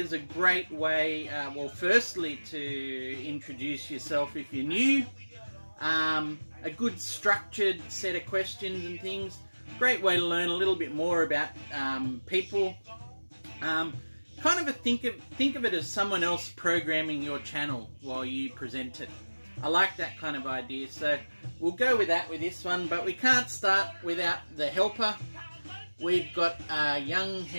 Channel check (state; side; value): inverted; both; correlation -1.00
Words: a great way, well, firstly to introduce yourself if you're new. A good structured set of questions and things. Great way to learn a little bit more about people. Kind of think of it as someone else programming your channel while you present it. I like that kind of idea, so we'll go with that with this one, but we can't start without the helper. We've got Young